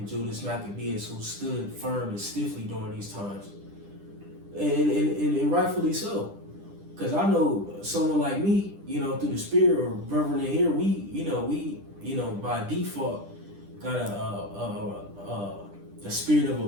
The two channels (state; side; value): late; left; 10 ms